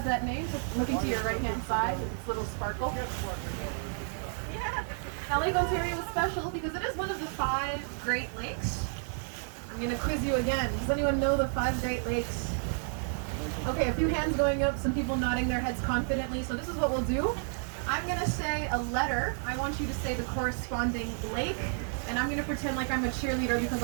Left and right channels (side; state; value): left; silent; 57 dB below the other